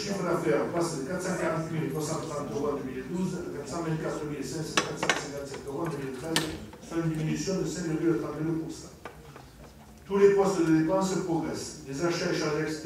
d'affaires passe de 440 330 € en 2012 à 424 457 € en 2013, soit une diminution de 5,32%. Tous les postes de dépenses progressent. Les achats et charges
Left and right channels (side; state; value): both; identical; correlation 1.00